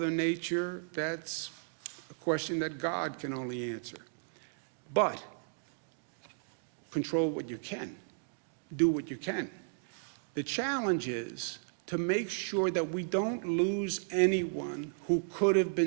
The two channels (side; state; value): left; silent; digital silence